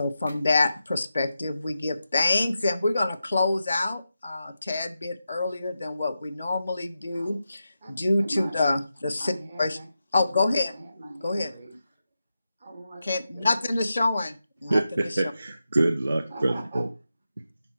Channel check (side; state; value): both; inverted; correlation -0.90